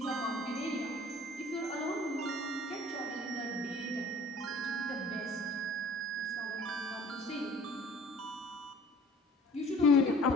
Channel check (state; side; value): normal; both; correlation 0.50